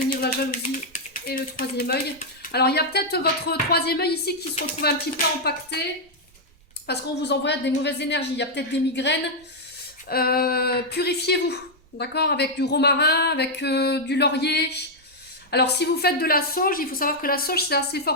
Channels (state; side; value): noise; right; rumble, 30 dB below the sound